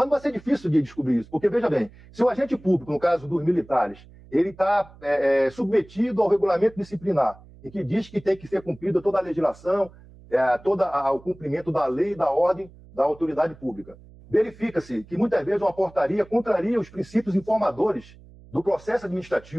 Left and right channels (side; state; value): right; noise; hum, 22 dB below the sound